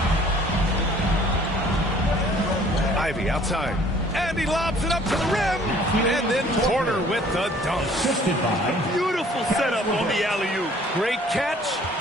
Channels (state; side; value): normal; both; correlation 0.56